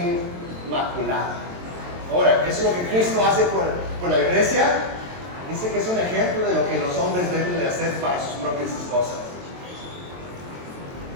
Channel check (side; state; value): left; late; 23 ms